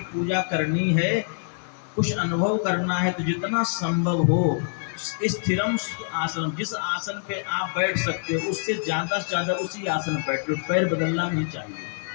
पूजा करनी है, कुछ अनुभव करना है, तो जितना संभव हो स्थिरम आसन, जिस आसन पे आप बैठ सकते हो उससे ज़्यादा से ज़्यादा उसी आसन पर बैठो, पैर बदलना नहीं चाहिए।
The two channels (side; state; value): right; silent; digital silence